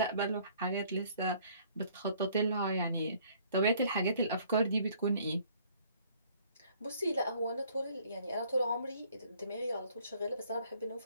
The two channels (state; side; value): inverted; both; correlation -0.59